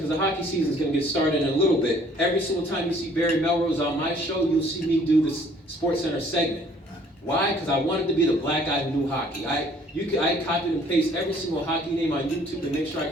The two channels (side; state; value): both; normal; correlation 0.58